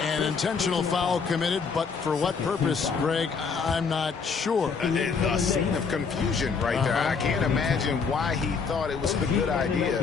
An intentional foul committed, but for what purpose, Greg, I'm not sure. A scene of confusion right there. I can't imagine why he thought it was a good idea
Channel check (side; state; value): right; quieter; 5.5 dB